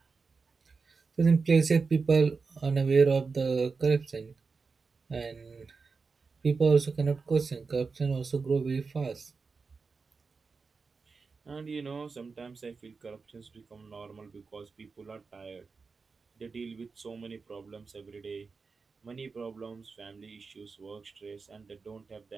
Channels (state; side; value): quieter; left; 4.7 dB